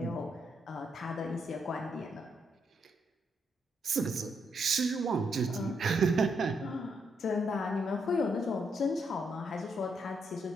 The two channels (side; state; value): both; normal; correlation 0.77